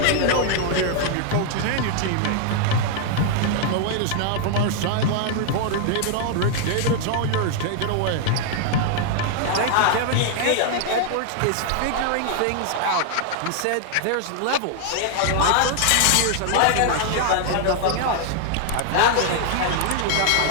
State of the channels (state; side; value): different; both; correlation 0.00